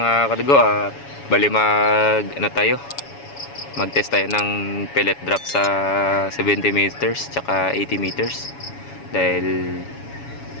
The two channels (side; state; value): right; late; 7.1 ms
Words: kadugo, bali mag-test tayo ng pellet drop sa 70 meters tsaka 80 meters dahil